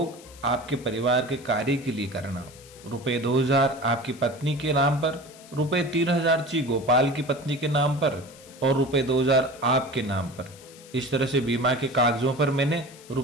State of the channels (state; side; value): noise; left; hiss, 21 dB below the sound